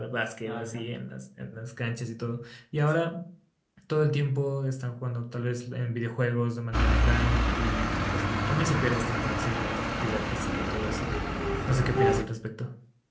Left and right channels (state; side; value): identical; both; correlation 1.00